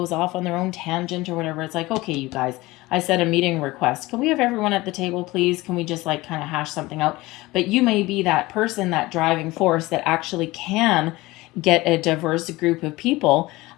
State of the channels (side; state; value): right; quieter; 20.1 dB